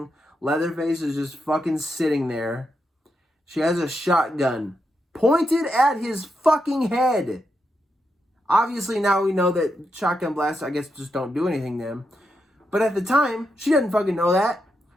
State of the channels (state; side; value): normal; both; correlation 0.84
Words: Leatherface is just fucking sitting there. She has a shotgun pointed at his fucking head. Obviously, now we know that shotgun blasts, I guess, just don't do anything to him. But at the time, she didn't fucking know that.